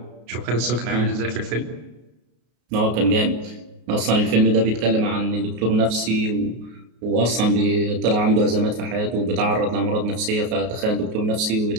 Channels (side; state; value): left; late; 33 ms